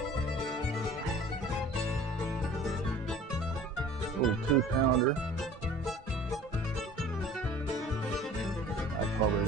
Little 2-pounder. I probably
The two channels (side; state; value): both; normal; correlation 0.46